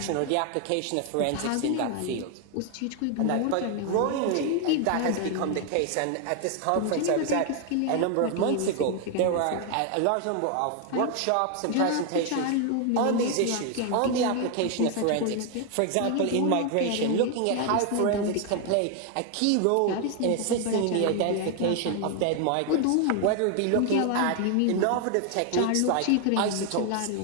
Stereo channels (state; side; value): different; both; correlation 0.00